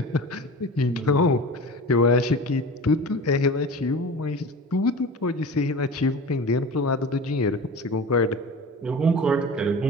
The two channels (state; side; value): normal; both; correlation 0.34